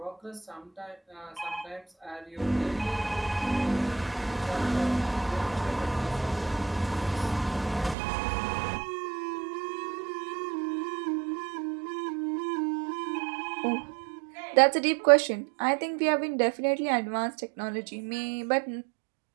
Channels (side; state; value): left; drops out; at 8.0 s